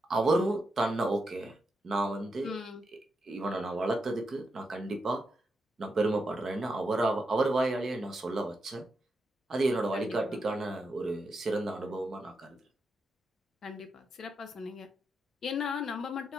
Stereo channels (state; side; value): normal; both; correlation 0.85